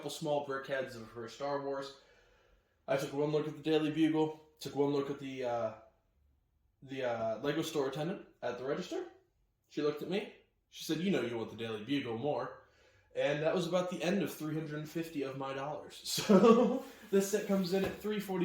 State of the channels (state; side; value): identical; both; correlation 1.00